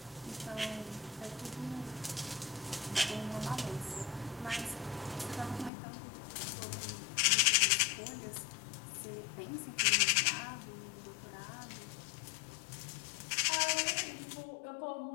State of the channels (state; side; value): drops out; right; at 5.7 s